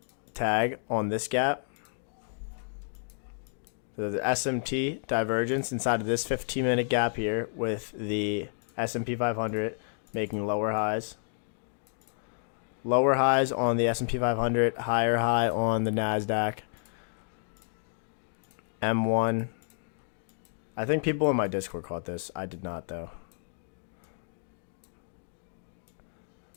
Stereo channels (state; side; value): silent; right; digital silence